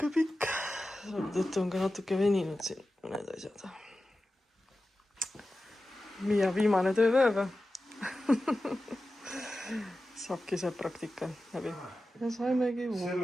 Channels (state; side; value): normal; both; correlation 0.94